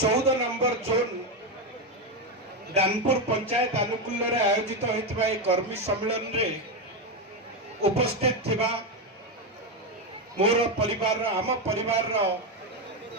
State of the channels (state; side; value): normal; both; correlation 0.10